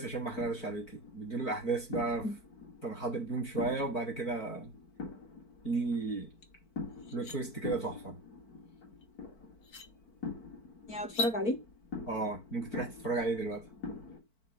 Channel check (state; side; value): late; right; 4.5 ms